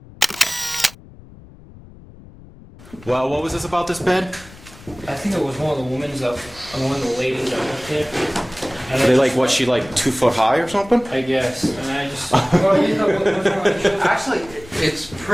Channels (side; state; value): left; noise; rumble, 20 dB below the sound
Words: Well, what was this about this bed? I think it was one of the women's one of the ladies that worked here. And Are they like, what, she like 2 foot high or something? I guess. And I just. Well, you know what was wrong? Actually, it's